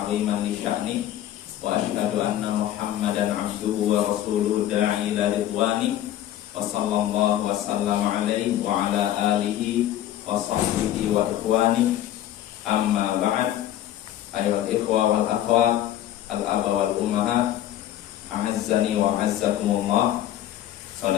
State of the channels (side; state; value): right; quieter; 12.5 dB